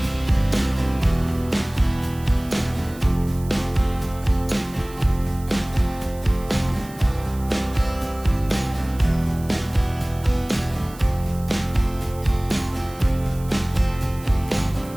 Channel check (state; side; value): noise; right; hiss, 21 dB below the sound